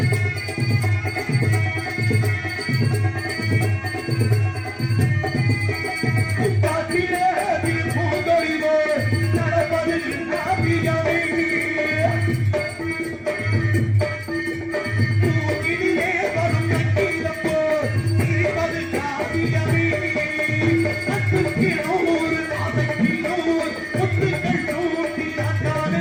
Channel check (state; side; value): identical; both; correlation 1.00